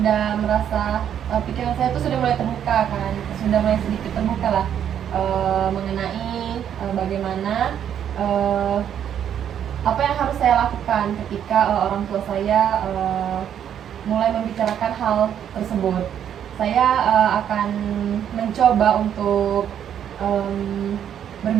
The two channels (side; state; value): left; quieter; 9.4 dB